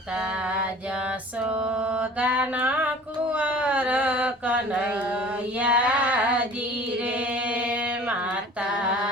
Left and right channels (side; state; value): both; normal; correlation 0.45